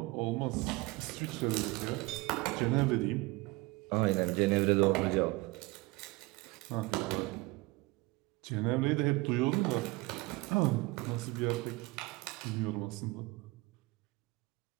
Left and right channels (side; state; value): left; quieter; 22.8 dB